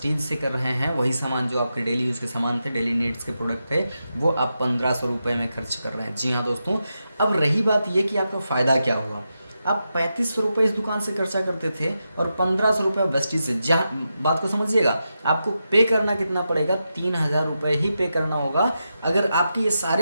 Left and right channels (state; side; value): inverted; both; correlation -0.88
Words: से कर रहे हैं, वही सामान जो आपके डेली यूज़ के सामान थे, डेली नीड्स के प्रोडक्ट थे, वो आप 1,500 रुपये में खर्च कर रहे हैं। जी हाँ दोस्तों, अब रही बात ये कि आपका फ़ायदा क्या हुआ। आप 3,500 रुपये इस दुकान से खर्चा करते थे और 1,500 रुपये वेस्टीज से। जहाँ बात को समझिएगा, आपको पे करना कितना पड़ेगा? 3,000 रुपये ही पे करना होगा। अगर आपके ये